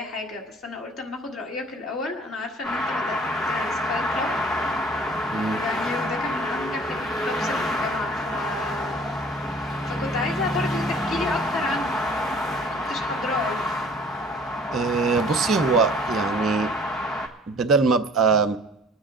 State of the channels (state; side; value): normal; both; correlation 0.51